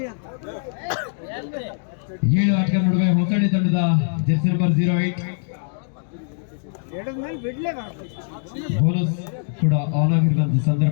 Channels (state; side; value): silent; right; digital silence